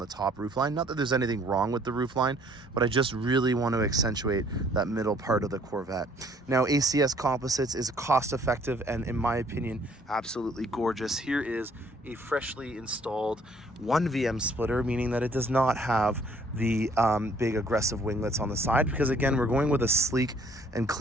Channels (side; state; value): both; normal; correlation 0.61